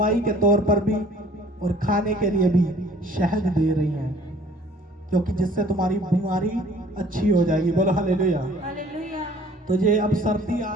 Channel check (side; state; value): both; normal; correlation 0.53